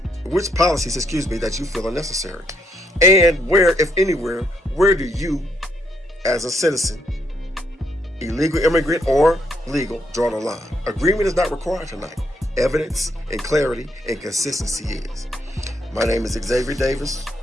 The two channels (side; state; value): both; normal; correlation 0.73